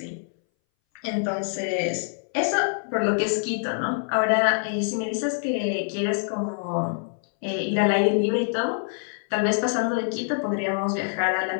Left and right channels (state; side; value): silent; right; 60 dB below the other